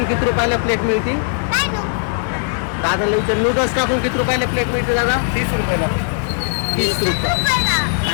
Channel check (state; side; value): silent; right; 67 dB below the other